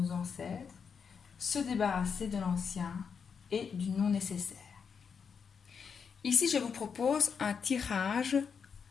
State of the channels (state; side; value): quieter; right; 6.3 dB